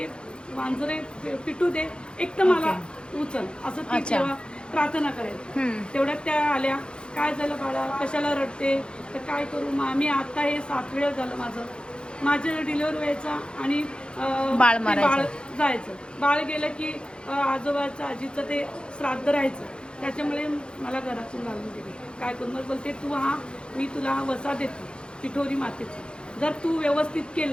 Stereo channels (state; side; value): late; right; 0.052 ms